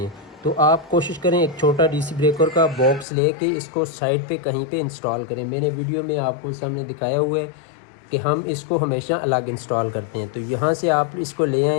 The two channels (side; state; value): right; drops out; at 3.1 s